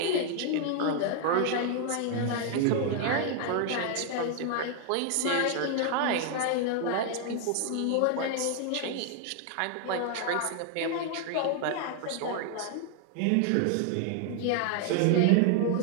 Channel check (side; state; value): both; different; correlation 0.00